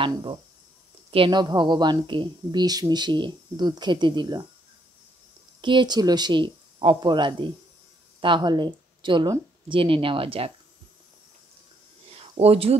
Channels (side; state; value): both; normal; correlation 0.72